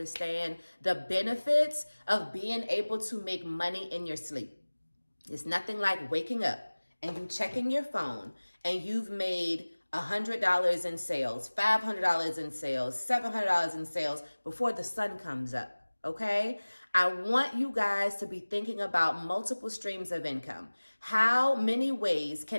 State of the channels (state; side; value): inverted; both; correlation -1.00